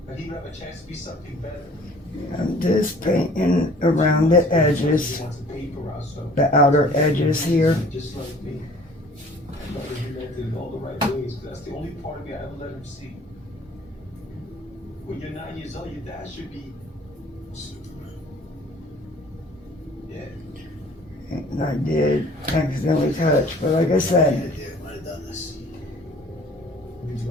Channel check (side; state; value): both; normal; correlation 0.51